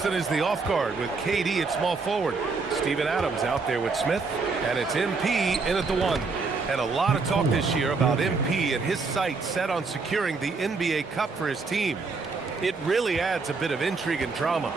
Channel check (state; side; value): quieter; left; 4.3 dB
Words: is the off guard with KD at small forward. Steven Adams out there with Smith. And it's MP in at the 1. And a lot of talk this year about MP and his sights set on securing the NBA Cup for his team. It really adds a bit of intrigue and drama